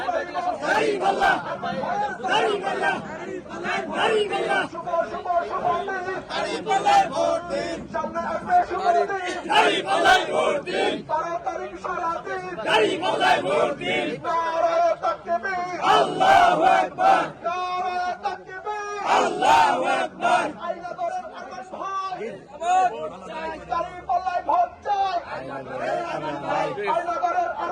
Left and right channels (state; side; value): identical; both; correlation 1.00